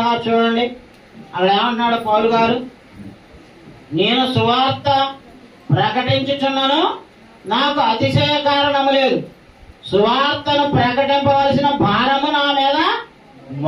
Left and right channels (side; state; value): both; identical; correlation 1.00